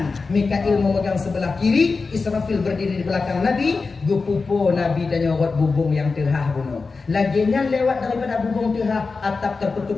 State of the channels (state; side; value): quieter; right; 4.3 dB